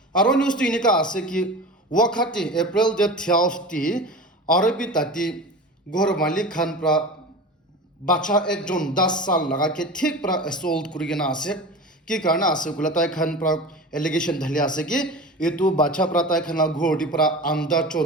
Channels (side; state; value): both; normal; correlation 0.32